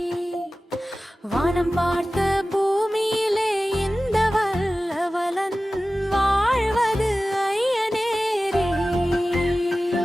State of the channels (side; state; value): both; normal; correlation 0.96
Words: வானம் பார்த்த பூமியிலே இந்த வல்லவலன் வாழ்வது ஐயனேரி.